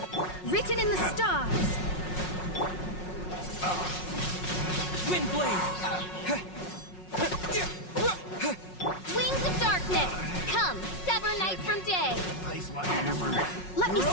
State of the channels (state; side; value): late; right; 5.5 ms